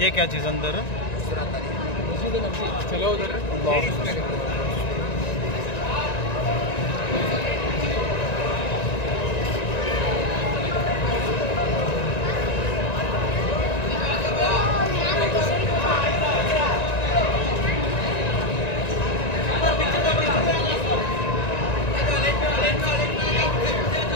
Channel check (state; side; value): late; right; 1.9 ms